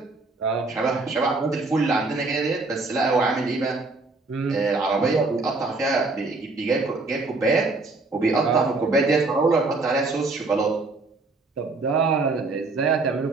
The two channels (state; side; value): quieter; left; 3.5 dB